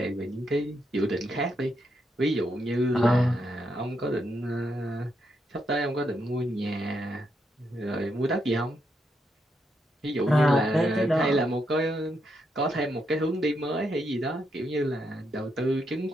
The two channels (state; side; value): normal; both; correlation 0.80